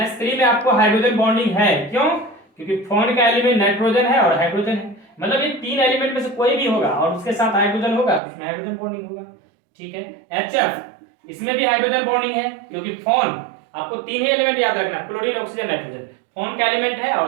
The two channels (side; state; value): left; drops out; at 8.2 s